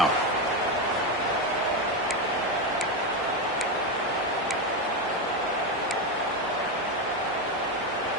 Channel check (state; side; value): normal; both; correlation 0.11